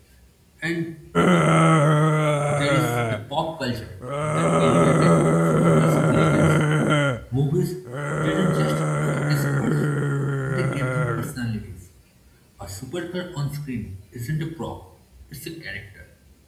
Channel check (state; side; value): identical; both; correlation 1.00